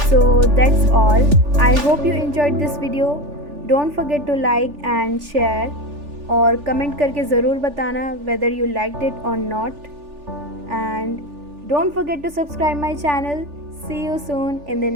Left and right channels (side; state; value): left; late; 3.4 ms